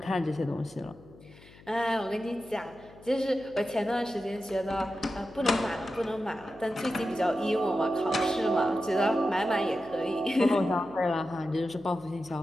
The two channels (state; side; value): noise; left; hum, 22 dB below the sound